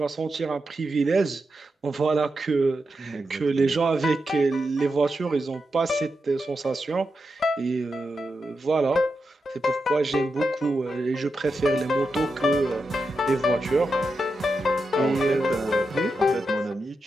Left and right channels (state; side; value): normal; both; correlation 0.88